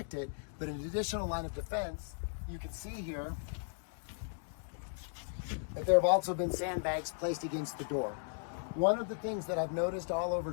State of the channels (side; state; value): right; silent; digital silence